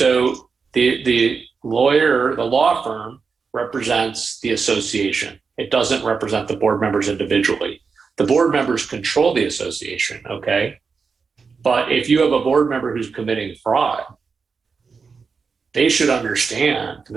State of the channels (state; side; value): quieter; left; 5.2 dB